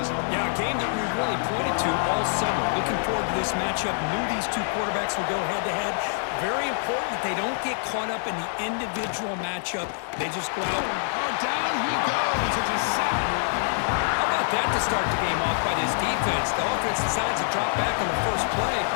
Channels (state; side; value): silent; right; digital silence